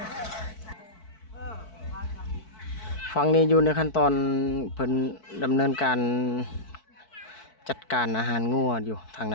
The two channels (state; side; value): late; right; 4.6 ms